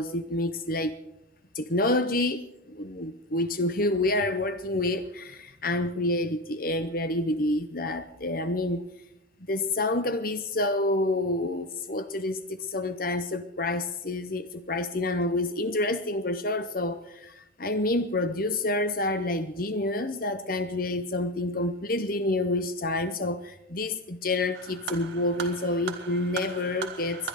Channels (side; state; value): both; normal; correlation 0.19